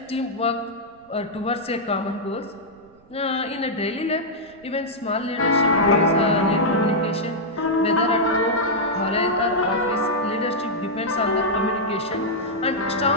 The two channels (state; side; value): noise; right; rumble, 30 dB below the sound